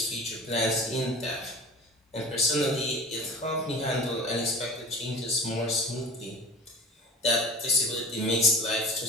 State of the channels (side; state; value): both; normal; correlation 0.38